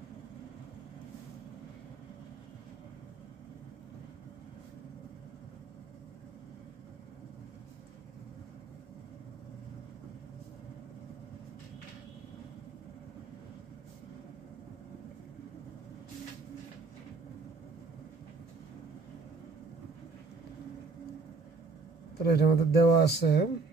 তাহলে এটা আমাদের দেওয়া আছে।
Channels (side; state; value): left; quieter; 4.0 dB